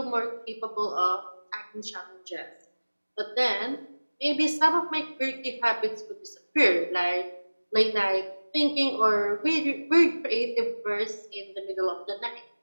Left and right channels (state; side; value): inverted; both; correlation -1.00